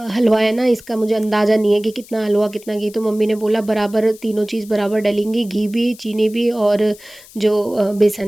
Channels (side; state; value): left; noise; hiss, 22 dB below the sound